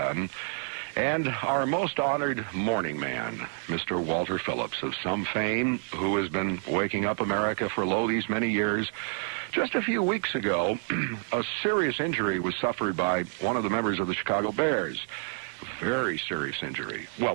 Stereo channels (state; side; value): silent; left; 59 dB below the other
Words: And our most honored morning man, Mr. Walter Phillips, of some fame, who has been waking up America for these many years. Just a few weeks ago, a serious injury was suffered by one of the members of the Chicago Bears. Very serious injury. Well,